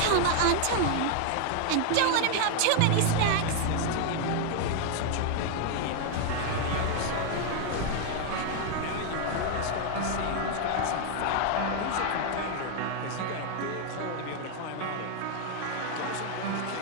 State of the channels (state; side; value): different; both; correlation 0.00